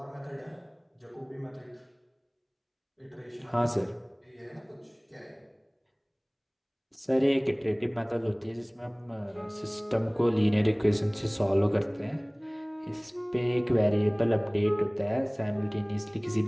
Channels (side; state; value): both; identical; correlation 1.00